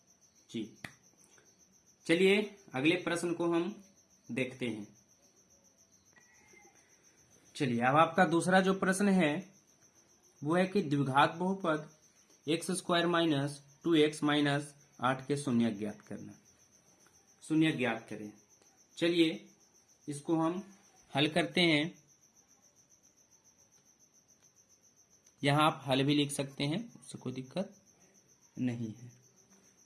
जी। चलिए अगले प्रश्न को हम देखते हैं। चलिए अब आपका दूसरा जो प्रश्न है वो है कि द्विघात बहुपद x square minus 2x minus 8 के शून्य ज्ञात करना, शून्य ज्ञात करें। चलिए इसको हम हल करते हैं। यहां आप हल भी लिख सकते हैं, उससे कोई दिक्कत नहीं है।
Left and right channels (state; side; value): identical; both; correlation 1.00